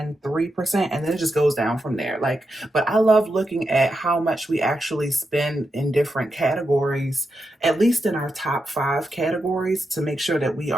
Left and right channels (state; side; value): normal; both; correlation 0.86